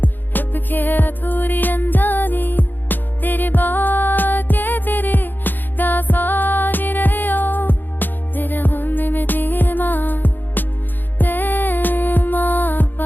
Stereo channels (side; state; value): right; late; 0.090 ms